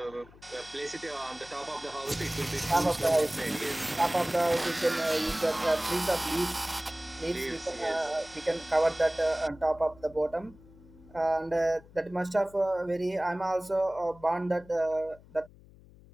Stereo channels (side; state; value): left; noise; hum, 23 dB below the sound